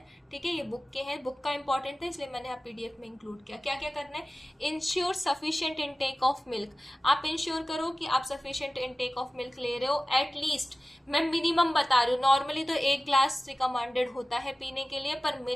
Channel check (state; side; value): normal; both; correlation 0.96